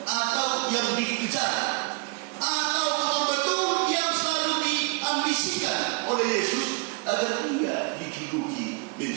atau yang dikejar atau betul-betul yang selalu diambisikan oleh Yesus agar ia dijuluki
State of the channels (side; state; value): left; quieter; 30.8 dB